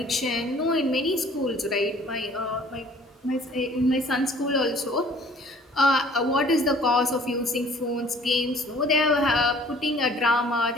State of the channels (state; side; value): normal; both; correlation 0.53